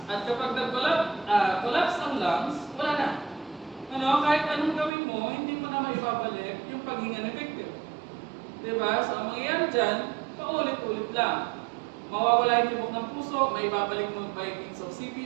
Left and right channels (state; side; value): drops out; left; at 4.9 s